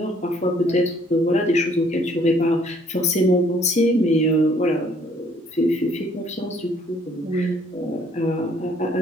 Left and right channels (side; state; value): both; normal; correlation 0.62